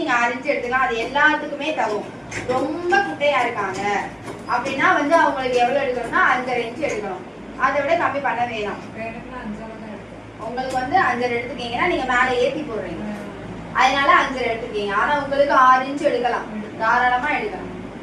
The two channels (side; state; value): both; identical; correlation 1.00